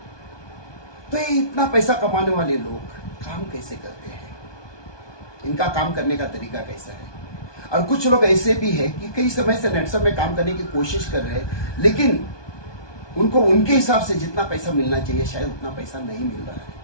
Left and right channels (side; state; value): right; late; 1.2 ms